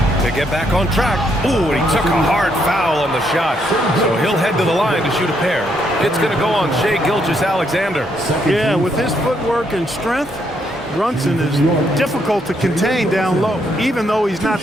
get back on track. Ooh, and he took a hard foul on the shot. So he'll head to the line to shoot a pair. It's going to go on Shai Gilgeous-Alexander. Yeah, with his footwork and strength, Brunson is difficult to contain down low, even though he's not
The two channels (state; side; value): normal; both; correlation 0.74